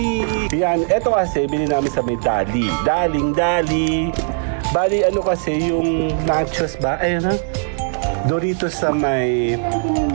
3. Yan. Ito kasi, bili namin sa may Dali. Dali. Bali, ano kasi, yung nachos ba? Ayun ha. Doritos sa may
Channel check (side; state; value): left; silent; digital silence